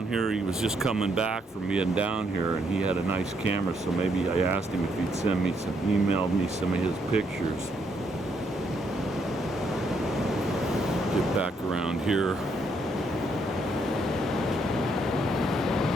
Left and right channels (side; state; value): both; normal; correlation 0.74